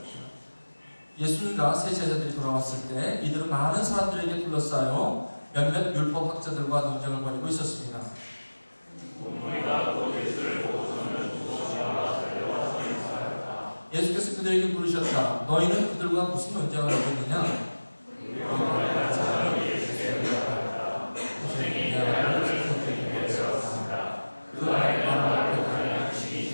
예수님과 세 제자들이 돌아왔을 때 이들은 많은 사람들에게 둘러싸여 몇몇 율법학자들과 논쟁을 벌이고 있었습니다. 예수께서 그들에게 물으셨다. 너희는 그들과 무슨 논쟁을 하고 있느냐?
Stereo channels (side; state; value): both; inverted; correlation -1.00